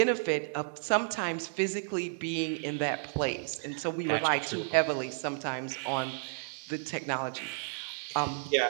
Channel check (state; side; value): silent; left; digital silence